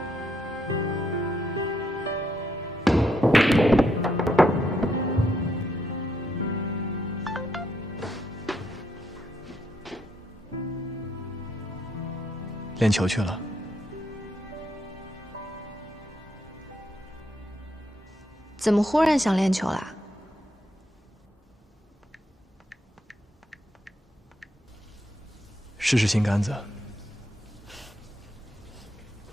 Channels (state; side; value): normal; both; correlation 0.77